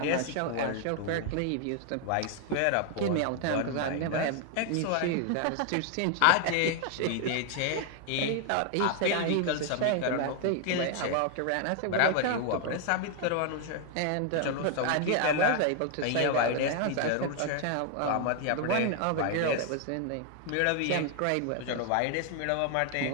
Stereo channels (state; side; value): different; both; correlation 0.00